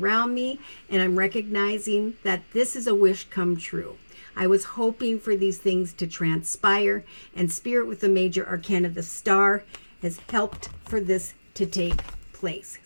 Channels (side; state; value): both; inverted; correlation -1.00